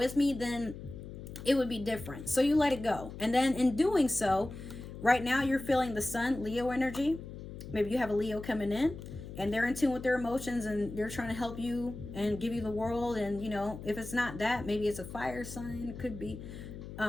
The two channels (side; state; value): left; noise; hum, 11 dB below the sound